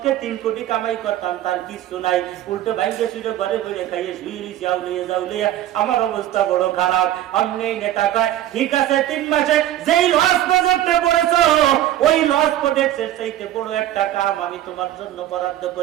3 কোটি কামাই করতাম, তার কিছু নাই, উল্টো ভাইকে শুয়ে ঘরে বইরে খাইয়ে শুয়ে দিছি, যাউলিয়া আমার অবস্থা বড় খারাপ। অমনি নেতা কয়, ঠিক আছে, 3 মাসে যেই লস প্রজেক্টে পড়েছো, ওই লস প্রজেক্টের চাইতে বড় একটা কাম আমি তোমার জন্য বরাদ্দ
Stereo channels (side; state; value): left; quieter; 12.8 dB